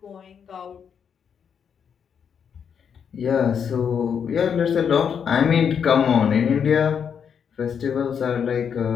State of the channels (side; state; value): right; quieter; 7.4 dB